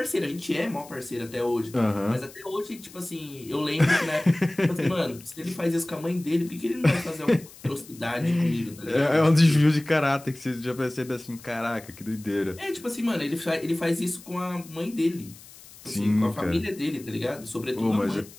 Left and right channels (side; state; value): left; noise; hiss, 20 dB below the sound